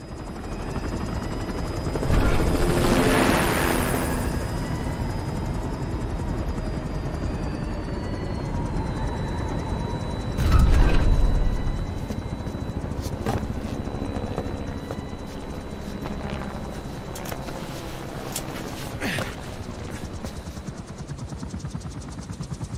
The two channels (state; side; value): identical; both; correlation 1.00